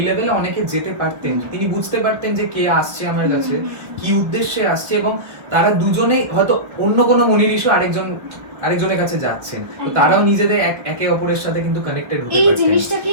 লেভেলে অনেকে যেতে পারতেন, তিনি বুঝতে পারতেন যে কে আসছে আমার কাছে, কি উদ্দেশ্যে আসছে, এবং তারা দুজনেই হয়তো অন্য কোনো মনি ঋষি আরেকজনের কাছে যাচ্ছেন, তো তারাও নিজেদের একে অপরের সাথে কিন্তু কানেক্টেড হতে পারছেন। এই জিনিসটা কি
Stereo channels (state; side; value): late; left; 1.4 ms